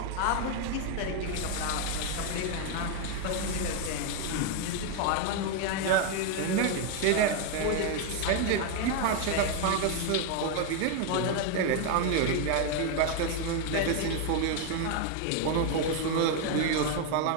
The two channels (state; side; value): different; both; correlation 0.01